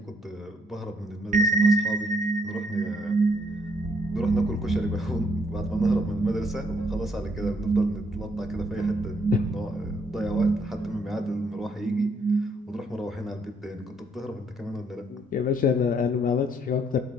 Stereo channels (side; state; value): both; normal; correlation 0.69